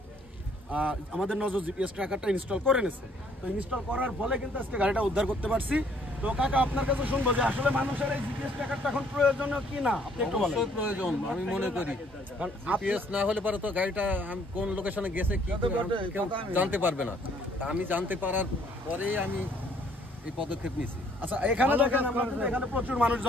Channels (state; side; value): normal; both; correlation 0.63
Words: আমাদের নজর জিপিএস ট্র্যাকারটা ইনস্টল করে নিয়েছে। তো ইনস্টল করার ফলে কিন্তু আজকে গাড়িটা উদ্ধার করতে পারছি। তো কাকা আপনার কাছে শুনবো যে আসলে মানুষের এই জিপিএস ট্র্যাকারটা এখন প্রয়োজনীয় কি না, আপনি একটু বলেন। অবশ্যই প্রয়োজন আমি মনে করি, কারণ জিপিএস না হলে পরে তো গাড়িটা কোন লোকেশনে গেছে কি কেউ জানতে পারবে না। আমি জানতে পারার পরেই আমি এই পদক্ষেপ নিয়েছি। আচ্ছা এখানে দেখেন, এখানে প্রচুর মানুষ